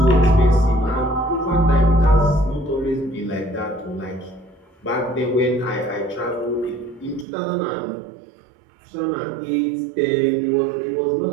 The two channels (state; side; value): drops out; left; at 7.2 s